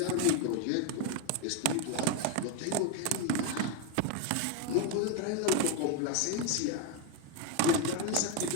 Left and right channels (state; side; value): different; both; correlation 0.02